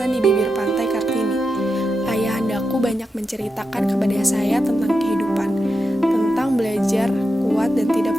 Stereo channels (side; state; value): both; normal; correlation 0.88